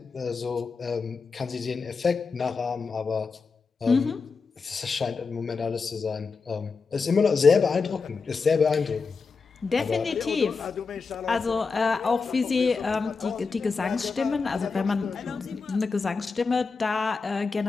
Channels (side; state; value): right; quieter; 4.8 dB